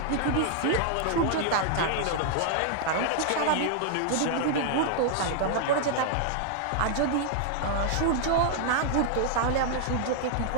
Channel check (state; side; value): different; both; correlation -0.01